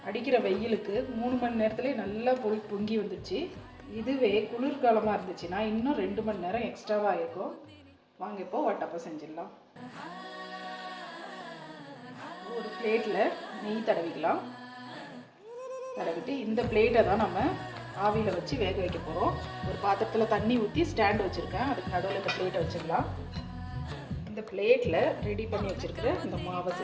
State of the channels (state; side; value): identical; both; correlation 1.00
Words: அடிக்கிற வெயிலுக்கு 3 மணி நேரத்துலேயே நல்லா பொங்கி வந்துடுச்சு. இதுவே குளிர்காலமாக இருந்துச்சுன்னா இன்னும் 2 மணி நேரம் எக்ஸ்ட்ராவாக இருக்கும். வாங்க இப்போ வட்டப்பம் செஞ்சிடலாம். ஒரு பிளேட்டில் நெய் தடவிக்கலாம். தடவிட்டு இந்த பிளேட்டை தான் நம்ம ஆவியில் வச்சு வேக வைக்க போகிறோம். ஒரு பாத்திரத்தில் தண்ணி ஊற்றி ஸ்டாண்ட் வச்சுருக்கேன், அதுக்கு நடுவில் இந்த பிளேட்டை வச்சிடலாம். இந்த பிளேட்டில் ரெடி பண்ணி வச்சுருக்கிற இந்த மாவை